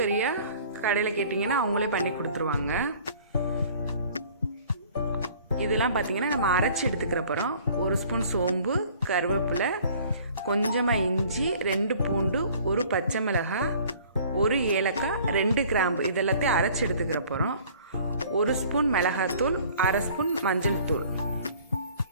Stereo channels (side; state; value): both; inverted; correlation -0.52